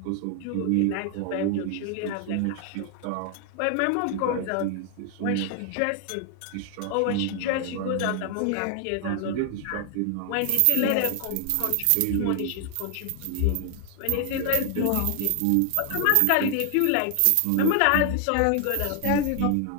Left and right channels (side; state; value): both; different; correlation 0.00